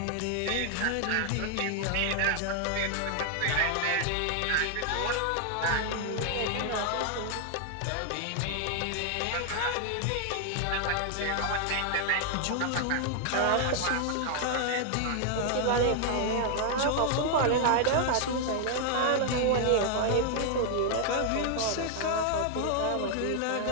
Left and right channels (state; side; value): different; both; correlation 0.00